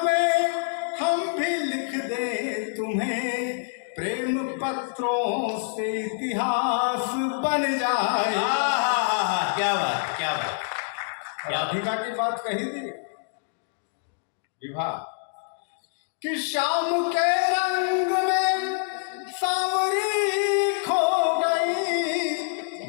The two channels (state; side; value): silent; right; digital silence